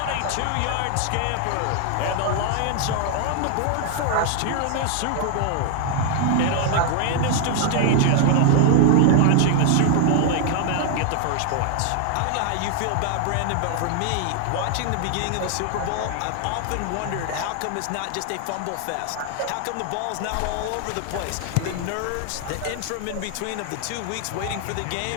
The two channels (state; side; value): different; both; correlation 0.00